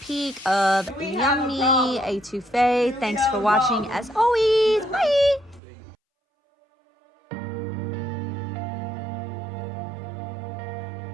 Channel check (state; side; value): drops out; left; at 5.6 s